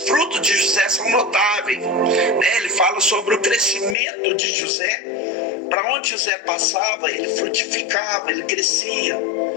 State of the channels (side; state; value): right; drops out; at 4.0 s